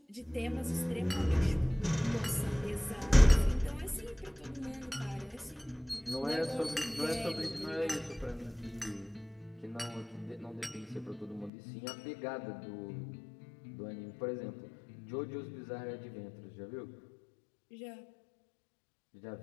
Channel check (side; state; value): right; drops out; at 11.5 s